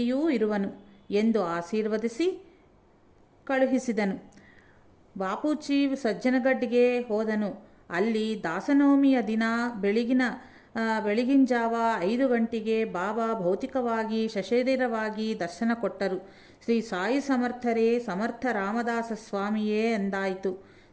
ಇರುವನು ಎಂದು ಆಶೀರ್ವದಿಸಿ ಕಳುಹಿಸಿದನು. ಬಾಪೂಜಿ ಸಜ್ಜನಗಡ್ಡಿಗೆ ಹೋದನು. ಅಲ್ಲಿ ದಾಸನವಮಿಯ ದಿನ ಬೆಳಗಿನ ಜಾವ 5 ಗಂಟೆಗೆ ಬಾಬಾ ಭೌತಿಕವಾಗಿ ಸಶರೀರವಾಗಿ ದರ್ಶನ ಕೊಟ್ಟರು. ಶ್ರೀ ಸಾಯಿ ಸಮರ್ಥರೇ, ಸಮರ್ಥ ರಾಮದಾಸ ಸ್ವಾಮಿಯೇ ಎಂದಾಯಿತು.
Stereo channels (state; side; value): identical; both; correlation 1.00